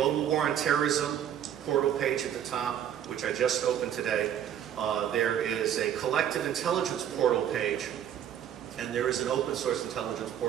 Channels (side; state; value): left; quieter; 9.8 dB